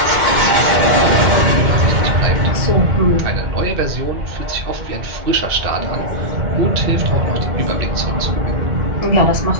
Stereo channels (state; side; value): late; left; 2.1 ms